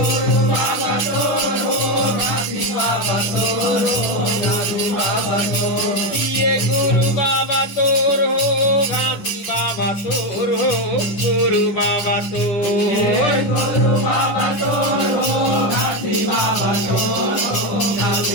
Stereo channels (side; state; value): right; late; 10 ms